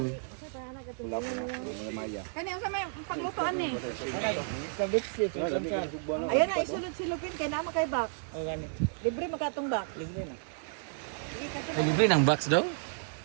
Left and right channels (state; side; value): silent; left; digital silence